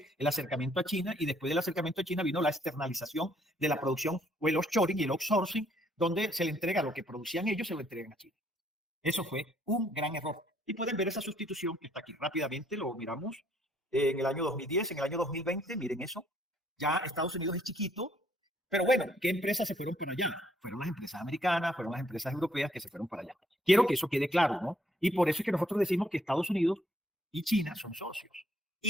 el acercamiento a China y después del acercamiento a China vino la externalización de la producción o el offshoring y el outsourcing, donde se le entrega lo que producían ellos, se lo entregan a China. Eso fue un gran error. Y pueden ver esa sustitución que está aquí. Rápidamente lo miramos en el año 2010, en el año 2020, miren eso. Ya Estados Unidos es chiquito, pero bueno, ¿qué empresas se fueron para allá? Fueron las empresas americanas, fueron las empresas europeas que se fueron para allá. Quiero que eso quede claro, ¿no? Y por eso es que nosotros decimos que Estados Unidos y China son socios.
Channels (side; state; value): both; normal; correlation 0.67